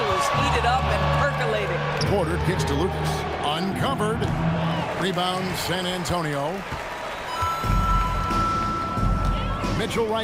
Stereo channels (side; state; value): both; identical; correlation 1.00